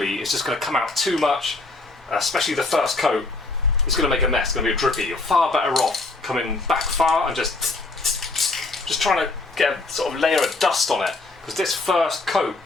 it's just going to come out too much, especially the first coat. It's going to make a mess. It's going to be a drippy. You're far better off coming back far and just trying to get a sort of layer of dust on it. Because this first coat,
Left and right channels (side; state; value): right; quieter; 3.3 dB